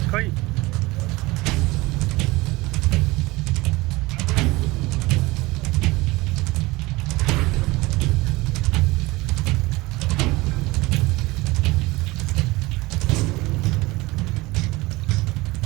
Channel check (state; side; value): quieter; left; 21.5 dB